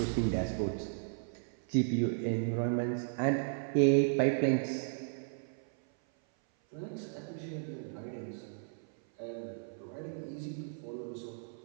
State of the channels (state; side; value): silent; left; 54 dB below the other